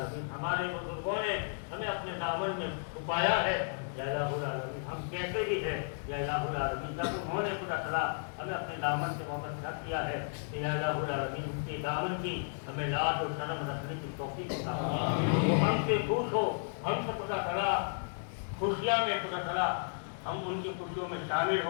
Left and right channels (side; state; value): right; silent; digital silence